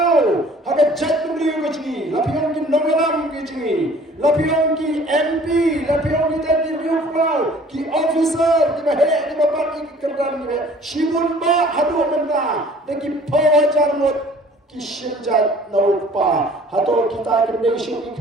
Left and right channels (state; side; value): normal; both; correlation 0.52